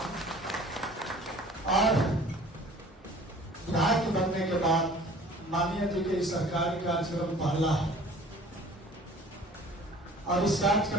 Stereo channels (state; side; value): normal; both; correlation 0.49